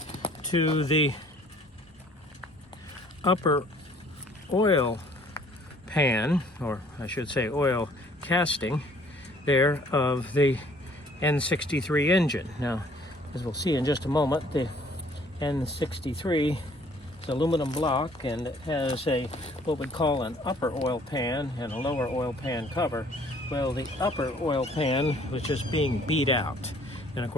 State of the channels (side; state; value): both; normal; correlation 0.58